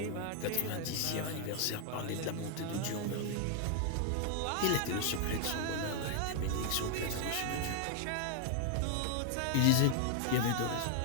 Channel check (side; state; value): both; different; correlation 0.00